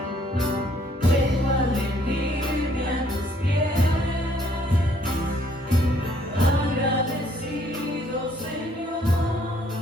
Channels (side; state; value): both; normal; correlation 0.65